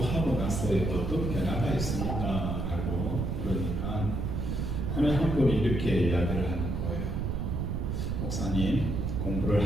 나서의 어떤 변화가 있습니까? 라고 물으니까 한 분이 이렇게 이야기를 하는 거예요. 목사님, 공부를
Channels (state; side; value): noise; right; rumble, 1 dB below the sound